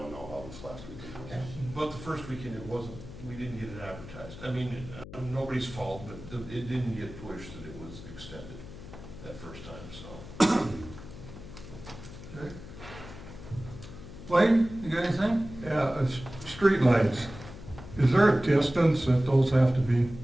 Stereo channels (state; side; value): noise; left; hum, 14 dB below the sound